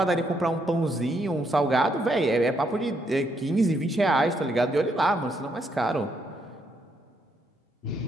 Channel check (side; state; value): both; normal; correlation 0.75